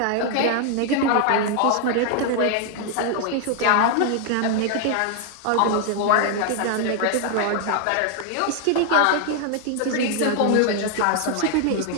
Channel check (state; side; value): different; both; correlation 0.00